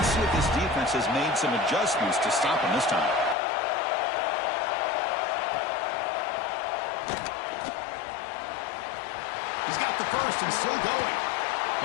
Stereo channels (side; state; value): right; drops out; at 3.4 s